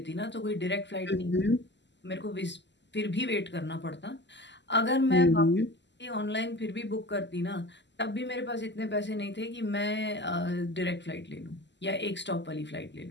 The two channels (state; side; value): late; right; 0.51 ms